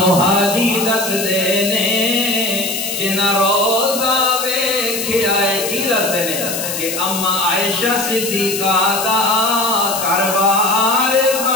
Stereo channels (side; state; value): left; noise; hiss, 4 dB below the sound